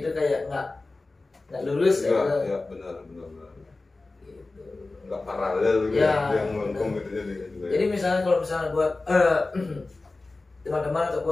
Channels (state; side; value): quieter; right; 3.3 dB